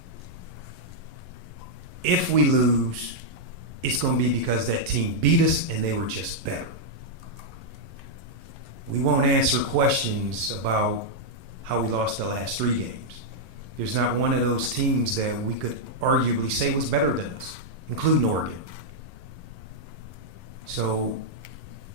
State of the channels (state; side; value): late; left; 11 ms